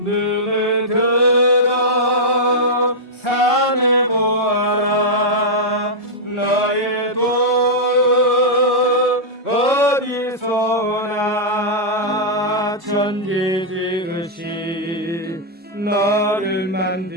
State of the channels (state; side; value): normal; both; correlation -0.08